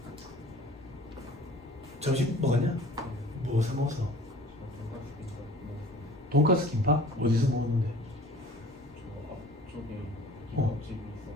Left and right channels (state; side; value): normal; both; correlation 0.47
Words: 점심 먹었냐? 무엇을 먹었어? 돈가스 김밥? 어디서 먹었는데? 앞쪽에